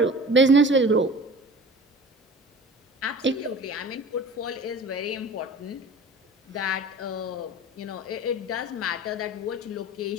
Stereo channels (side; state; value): both; normal; correlation 0.41